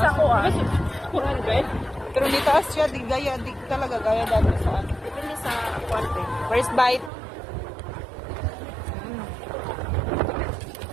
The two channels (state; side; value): drops out; left; at 7.1 s